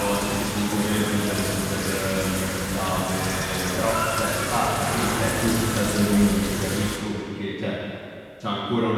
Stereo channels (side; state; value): both; identical; correlation 1.00